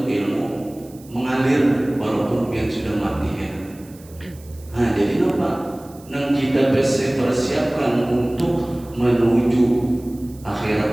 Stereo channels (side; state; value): right; noise; hiss, 25 dB below the sound